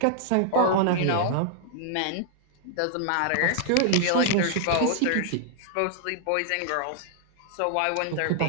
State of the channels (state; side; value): different; both; correlation -0.01